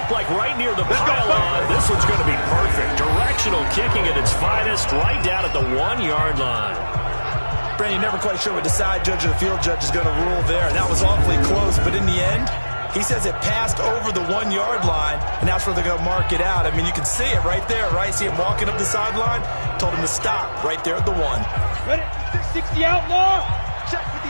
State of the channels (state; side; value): inverted; both; correlation -1.00